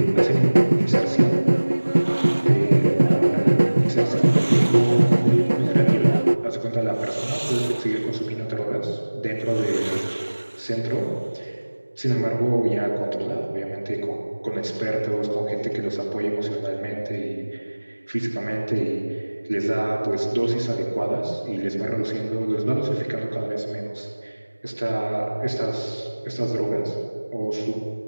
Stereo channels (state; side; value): inverted; both; correlation -1.00